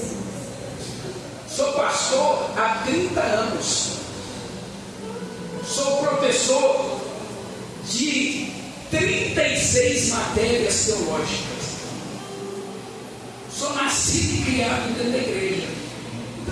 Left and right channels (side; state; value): both; identical; correlation 1.00